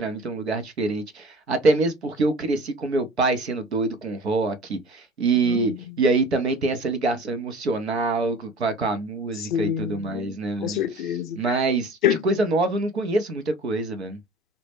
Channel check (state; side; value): normal; both; correlation 0.42